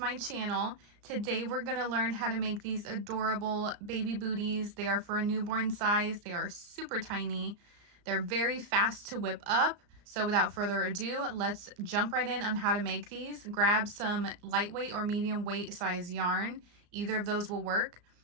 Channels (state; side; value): late; left; 34 ms